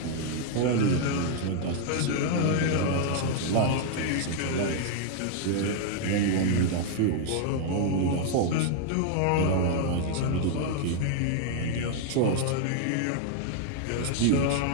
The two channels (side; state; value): both; different; correlation 0.00